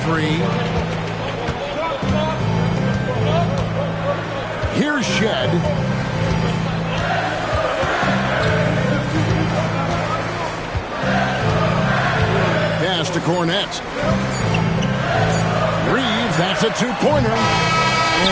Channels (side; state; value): both; identical; correlation 1.00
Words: 3. Here's Shed. Pass to Cornette. Reeves, that's a two-pointer.